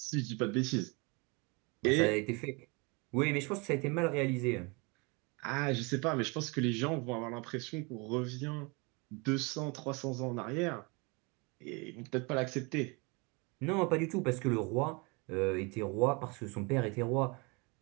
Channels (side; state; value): left; quieter; 29.1 dB